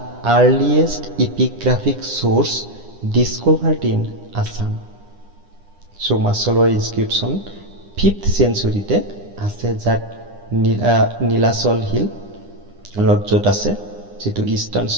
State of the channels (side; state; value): left; late; 9.9 ms